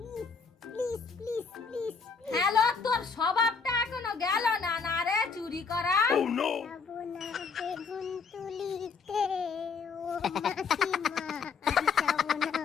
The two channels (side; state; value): right; quieter; 5.4 dB